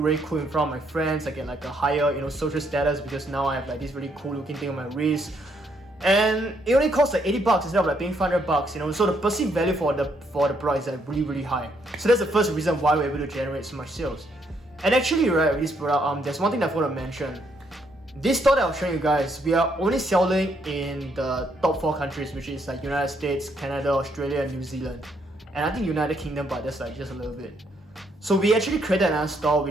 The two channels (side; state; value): both; normal; correlation 0.73